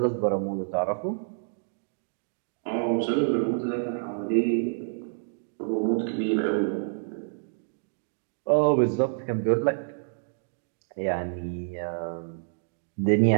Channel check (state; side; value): silent; left; digital silence